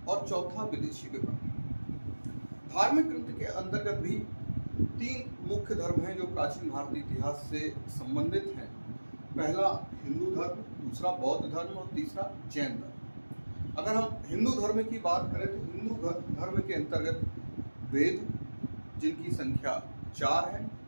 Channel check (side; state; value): both; inverted; correlation -1.00